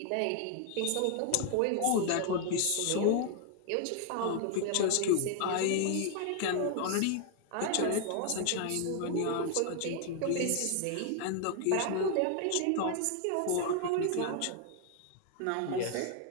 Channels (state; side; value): different; both; correlation 0.00